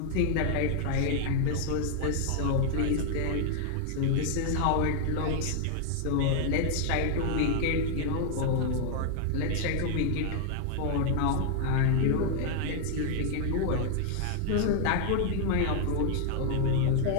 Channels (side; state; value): both; different; correlation 0.00